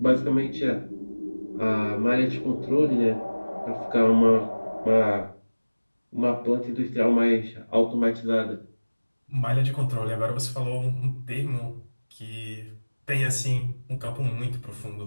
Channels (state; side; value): inverted; both; correlation -1.00